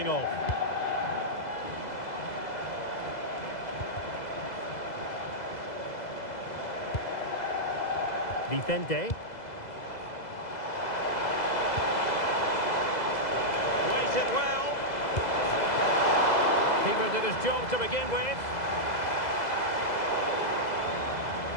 off. Vicente. Waited well. Keeper did his job to begin with.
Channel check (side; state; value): right; late; 2.0 ms